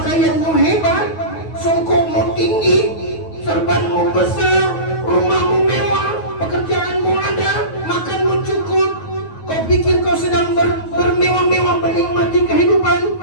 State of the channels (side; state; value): right; late; 9.3 ms